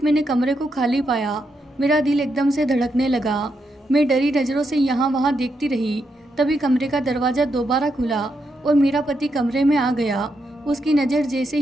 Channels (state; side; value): normal; both; correlation 0.82